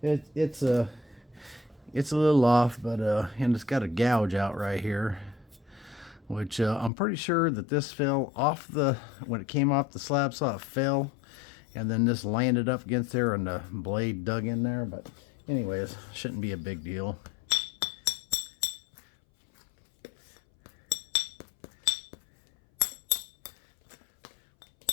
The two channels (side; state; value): right; drops out; at 6.9 s